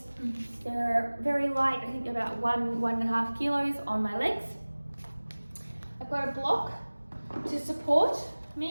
They're very light, I think about 1.5 kilos on my legs. I've got a block to support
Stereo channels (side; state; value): both; inverted; correlation -1.00